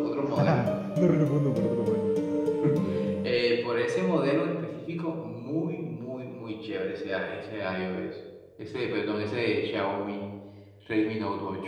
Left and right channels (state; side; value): identical; both; correlation 1.00